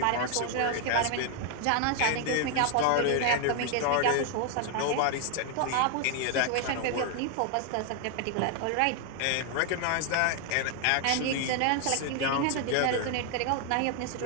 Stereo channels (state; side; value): different; both; correlation 0.00